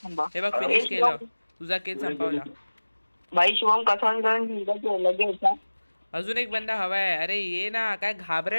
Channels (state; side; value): inverted; both; correlation -1.00